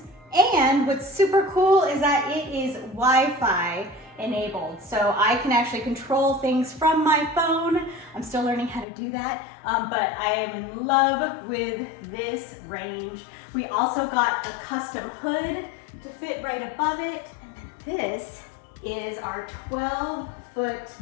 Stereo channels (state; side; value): drops out; right; at 8.8 s